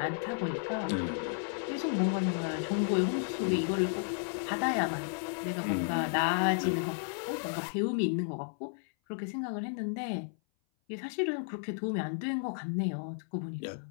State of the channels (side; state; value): right; silent; 56 dB below the other